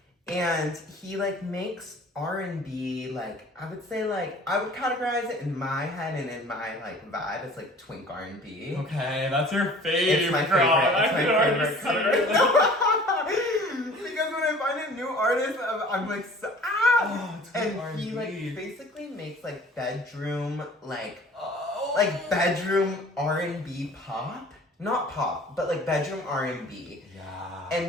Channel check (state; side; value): normal; both; correlation 0.48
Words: And he like makes R&B, like I would say, like I would categorize it in my head and in my like vibe as like twink R&B. Okay, that's your favorite. It's my favorite. It's my favorite category. Because when I find a new artist, I'm like, and R&B. he like basically makes like bedroom like Oh. bedroom R&B pop, not pop, but like bedroom R&B. Yeah.